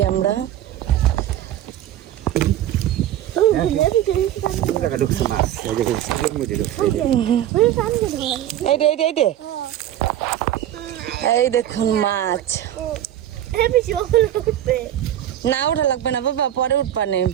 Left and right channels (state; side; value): quieter; left; 11.9 dB